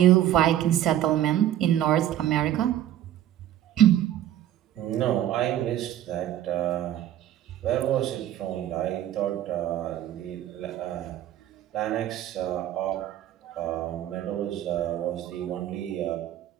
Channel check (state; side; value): quieter; left; 12.0 dB